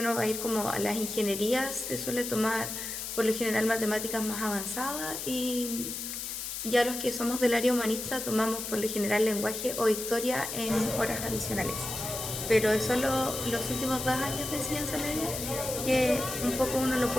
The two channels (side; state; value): left; noise; hiss, 6 dB below the sound